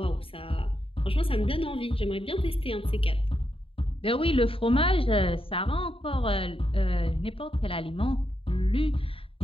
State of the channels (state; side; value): late; right; 0.26 ms